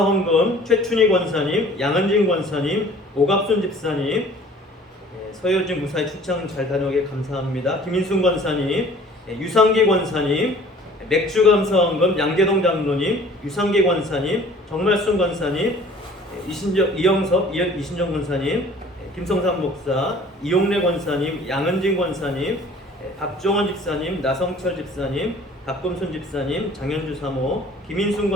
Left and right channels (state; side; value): normal; both; correlation 0.50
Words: 최춘희 권사님, 양은진 권사님, 오갑순 집사님, 서효진 무사히 출장 잘 다녀오게 감사합니다. 김인순 권사님, 유상기 권사님, 맥주감사헌금 양계동 장로님, 유상기 권사님, 정말순 권사님, 이영섭 이신정 권사님, 김성삼 목사, 이용래 권사님, 양은진 권사님, 박종원 집사님, 나성철 집사님, 박금순 집사님, 장현주 사모, 김인순